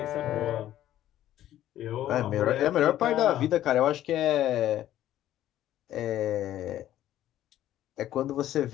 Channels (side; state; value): right; quieter; 12.8 dB